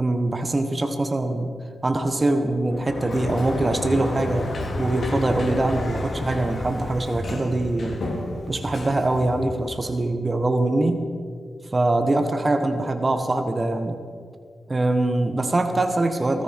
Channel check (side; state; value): both; normal; correlation 0.94